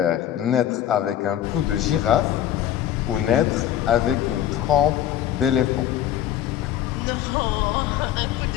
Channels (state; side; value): quieter; right; 11.4 dB